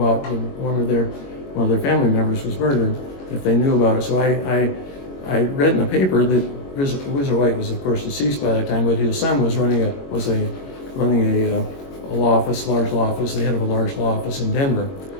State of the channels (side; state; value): right; late; 22 ms